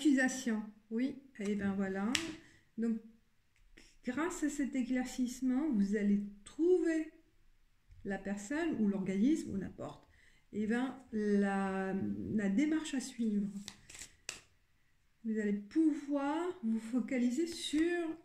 oui, et bien voilà. Donc, grâce à cet éclaircissement, vous allez trouver la personne ou l'organisme ou n'importe, et bien la démarche à suivre. Vous allez pouvoir vous focaliser sur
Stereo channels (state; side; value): identical; both; correlation 1.00